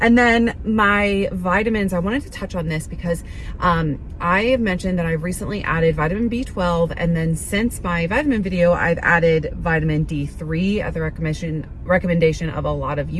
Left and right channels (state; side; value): identical; both; correlation 1.00